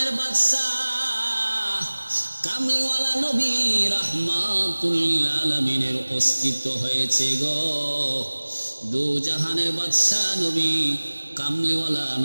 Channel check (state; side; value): inverted; both; correlation -1.00